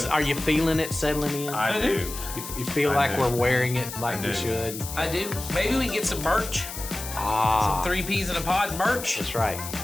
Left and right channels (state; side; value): noise; left; hiss, 9 dB below the sound